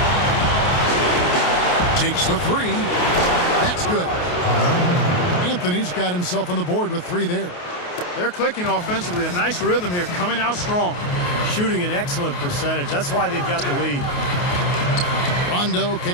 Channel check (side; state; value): right; late; 28 ms